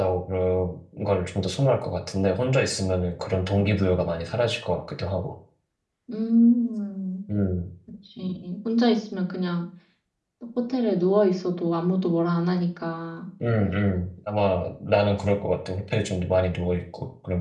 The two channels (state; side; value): identical; both; correlation 1.00